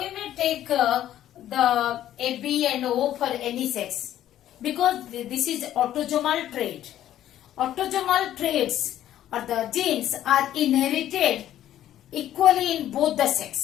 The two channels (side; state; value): right; quieter; 12.2 dB